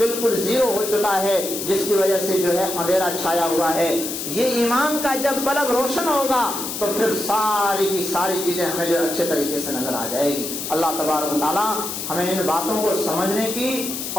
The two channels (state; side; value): noise; left; hiss, 5 dB below the sound